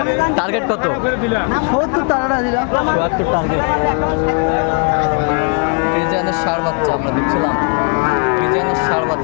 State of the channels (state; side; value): quieter; right; 37.7 dB